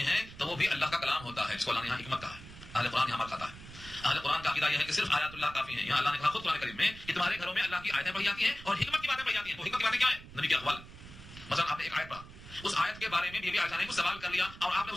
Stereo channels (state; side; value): noise; right; rumble, 16 dB below the sound